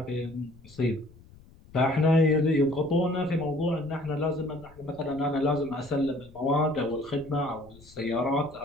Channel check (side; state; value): left; noise; rumble, 23 dB below the sound